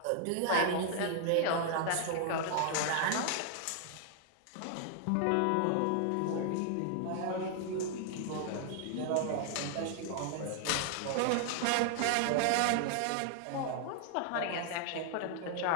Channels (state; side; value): different; both; correlation 0.00